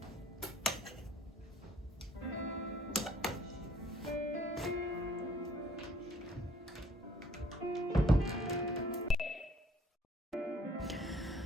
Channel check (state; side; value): normal; both; correlation 0.59